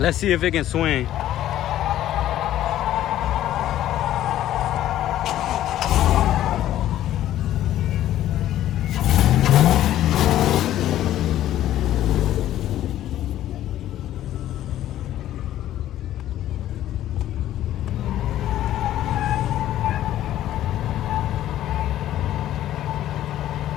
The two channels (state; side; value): quieter; right; 12.8 dB